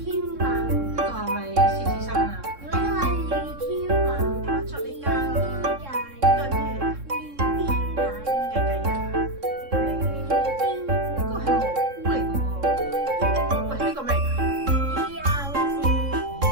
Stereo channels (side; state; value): left; late; 3.7 ms